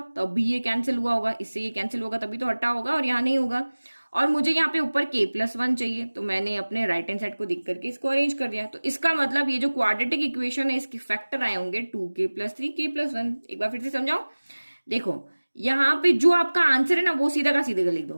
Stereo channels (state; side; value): inverted; both; correlation -1.00